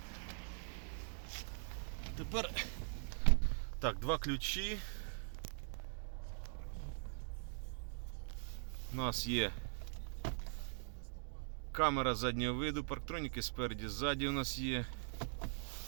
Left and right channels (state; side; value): silent; left; digital silence